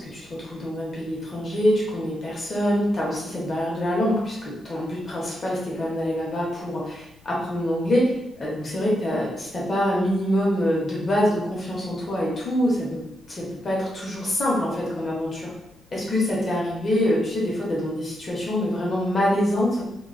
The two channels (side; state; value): left; noise; rumble, 29 dB below the sound